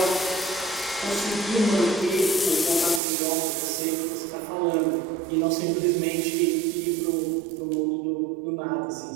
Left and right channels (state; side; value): drops out; left; at 3.0 s